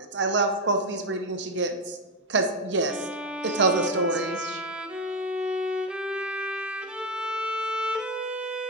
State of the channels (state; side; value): normal; both; correlation 0.06